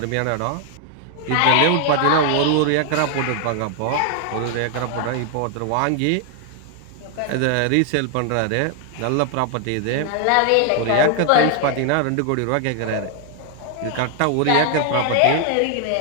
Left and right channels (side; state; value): both; different; correlation 0.00